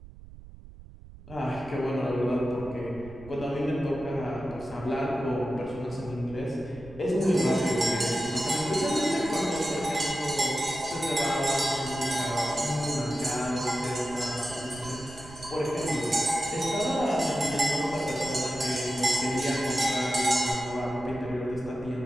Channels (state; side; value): noise; right; rumble, 17 dB below the sound